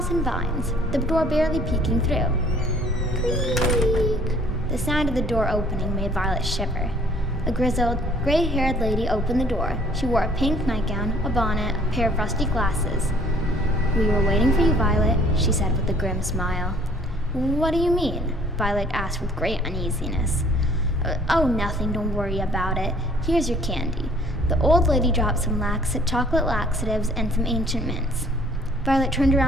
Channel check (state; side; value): normal; both; correlation 0.57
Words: and vines, the door barely peeking through. Creak! The sound of the door opening made Violet shiver. A grizzled, gray-haired lady opened the door. She wore a pink nightgown, a bonnet, a pair of rusty glasses. "We were waiting for you, Violet," she said with a grim smile. "What do you mean?" Violet asked with great uneasiness. "Oh, nothing, don't worry about it. Here's your candy." The old lady dropped some chocolate laxatives and some ancient mints. Violet turned